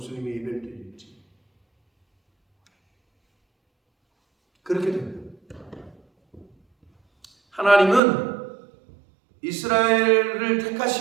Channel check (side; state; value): left; drops out; at 8.0 s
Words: 예배를 드릴지. 그렇게 됩니다. 하나님은 이스라엘을